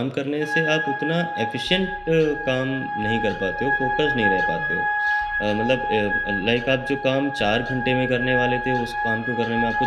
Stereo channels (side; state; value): both; identical; correlation 1.00